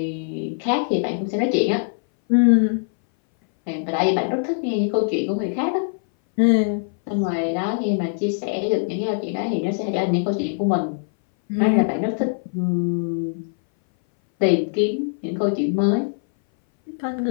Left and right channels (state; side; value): silent; right; 60 dB below the other